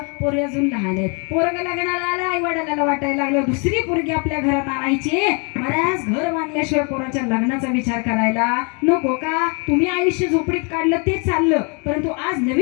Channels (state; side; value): quieter; right; 35.2 dB